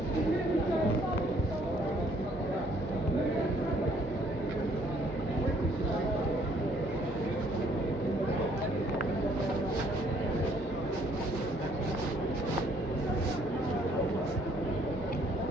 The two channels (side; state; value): both; normal; correlation 0.64